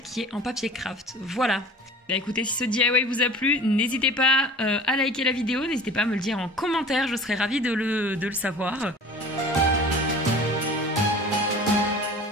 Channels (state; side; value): normal; both; correlation 0.41